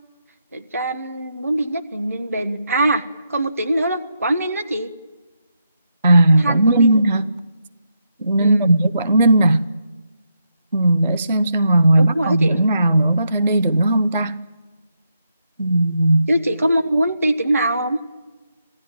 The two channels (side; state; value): both; inverted; correlation -0.82